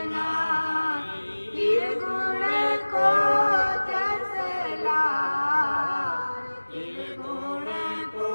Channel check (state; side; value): inverted; both; correlation -1.00